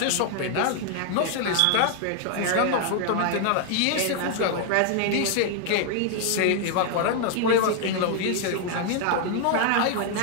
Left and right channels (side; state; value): both; different; correlation 0.00